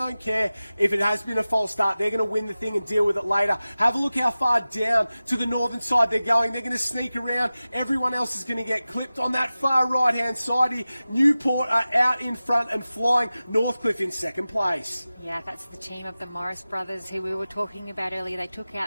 care if it has been a false start. They're going to win the thing and deal with it later. Have a look how far down to the northern side they're going. They're going to sneak around. Everyone else is going to get clipped on that far right hand side here. Newport are out in front and flying. Northcliffe in second place. Yeah, that's the team of the Morris brothers who we were talking about earlier. They took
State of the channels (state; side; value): inverted; both; correlation -0.96